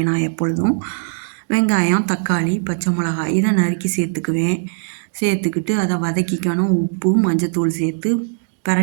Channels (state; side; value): silent; left; digital silence